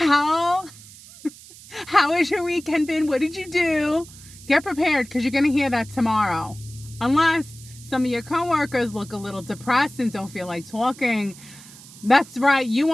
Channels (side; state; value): right; noise; hiss, 19 dB below the sound